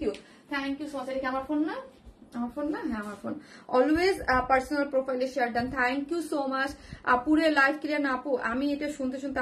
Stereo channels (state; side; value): identical; both; correlation 1.00